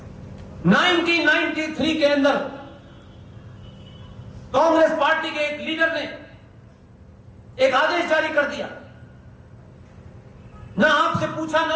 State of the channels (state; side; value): identical; both; correlation 1.00